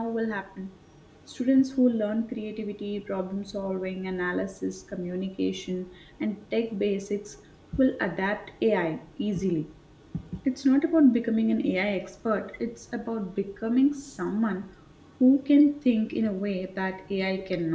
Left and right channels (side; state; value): both; identical; correlation 1.00